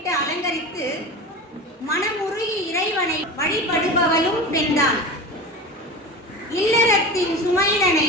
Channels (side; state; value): both; normal; correlation 0.30